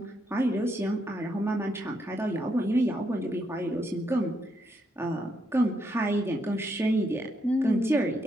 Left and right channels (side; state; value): both; normal; correlation 0.78